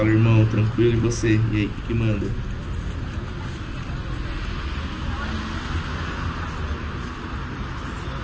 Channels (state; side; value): identical; both; correlation 1.00